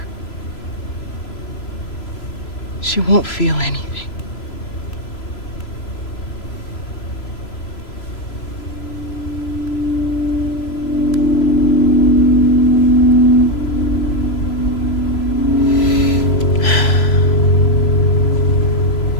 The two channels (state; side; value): late; right; 3.0 ms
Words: She won't feel anything.